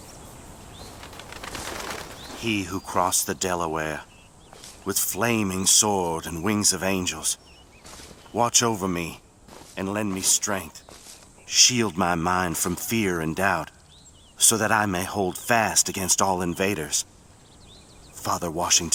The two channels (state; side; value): identical; both; correlation 1.00